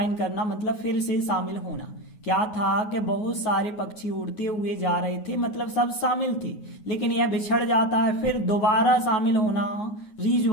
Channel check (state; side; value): late; right; 9.5 ms